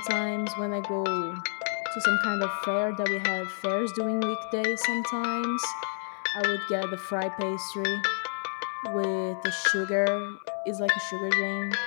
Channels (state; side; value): silent; right; 59 dB below the other